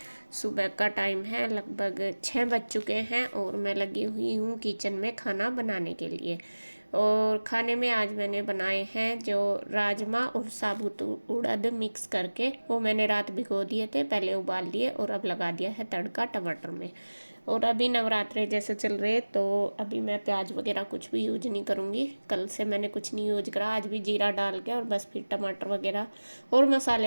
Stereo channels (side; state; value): both; inverted; correlation -1.00